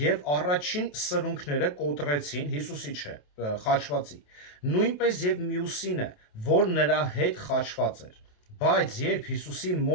առաջին սրունքները կոտրեցին Հիսուսի խաչվածի, նույնպես եւ մյուսինը, որ նրա հետ խաչված էր, բայց երբ Հիսուսի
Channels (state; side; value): late; right; 28 ms